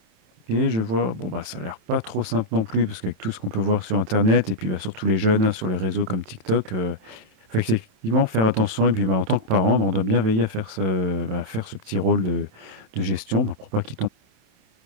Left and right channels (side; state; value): left; late; 27 ms